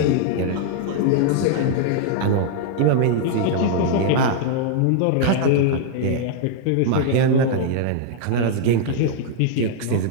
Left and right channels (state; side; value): different; both; correlation -0.01